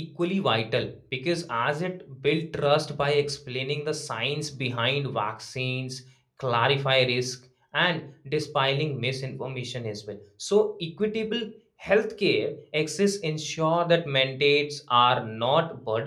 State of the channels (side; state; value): both; identical; correlation 1.00